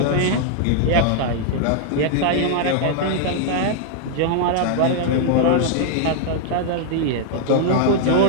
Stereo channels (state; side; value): different; both; correlation -0.01